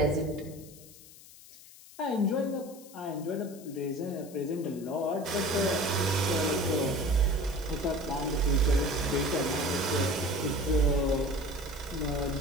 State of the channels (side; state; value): left; noise; hiss, 20 dB below the sound